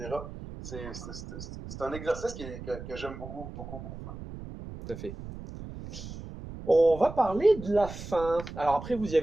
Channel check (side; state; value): right; noise; rumble, 11 dB below the sound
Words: C'est un exercice que j'aime beaucoup, beaucoup, beaucoup faire. Tout à fait. On va parler de la fin. Alors après, vous y